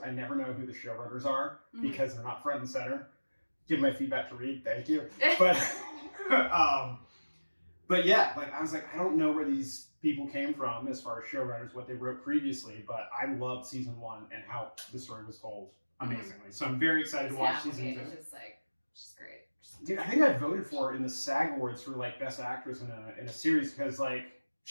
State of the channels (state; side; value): inverted; both; correlation -1.00